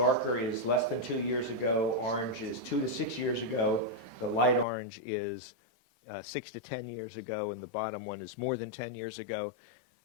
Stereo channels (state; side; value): drops out; right; at 4.7 s